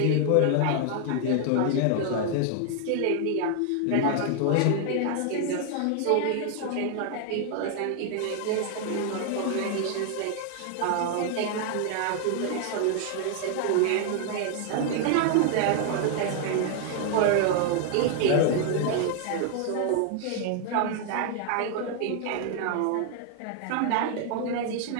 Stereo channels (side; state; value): both; different; correlation 0.00